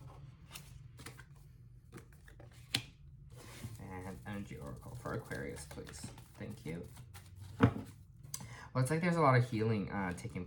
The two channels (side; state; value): both; identical; correlation 1.00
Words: Energy Oracle for Aquarius, please. Thank you. Well, it's like there's a lot of healing taking